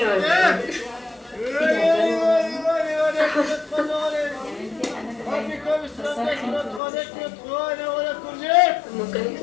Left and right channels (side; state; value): right; drops out; at 6.8 s